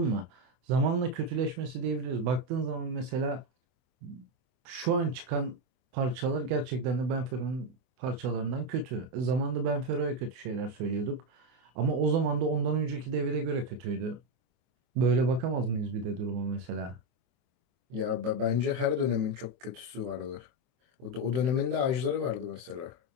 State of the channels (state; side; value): late; left; 24 ms